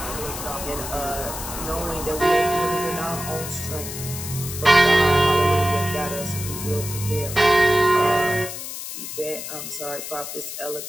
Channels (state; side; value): noise; left; hiss, 8 dB below the sound